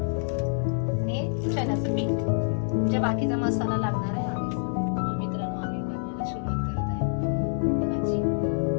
चण्याचं पीठ, जे बाकीचा मसाला लागणार आहे. मित्रांनो, आम्ही बनवायला सुरुवात करत आहे भाजी.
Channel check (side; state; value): right; silent; 60 dB below the other